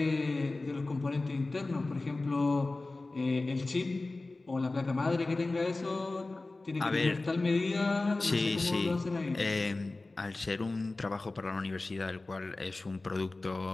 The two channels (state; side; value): quieter; right; 3.2 dB